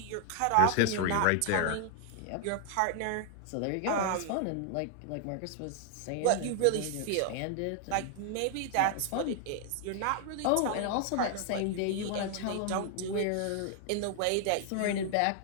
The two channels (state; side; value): different; both; correlation 0.00